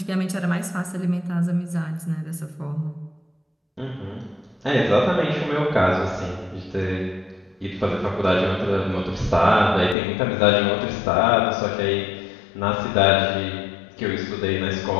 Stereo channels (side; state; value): right; drops out; at 10.0 s